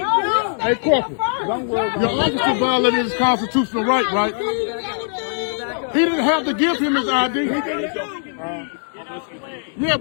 Hey, Corporal. Your officer violated his constitutional right? He didn't have to give him his ID. Yeah,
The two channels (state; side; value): silent; right; 65 dB below the other